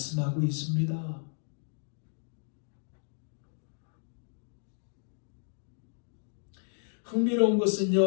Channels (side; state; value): right; silent; digital silence